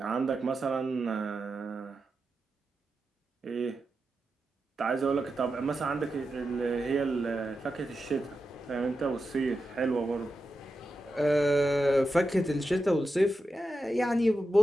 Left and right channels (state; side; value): normal; both; correlation 0.89